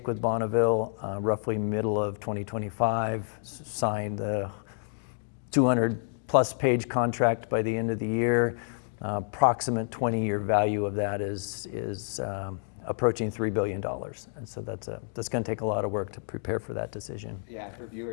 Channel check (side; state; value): right; silent; digital silence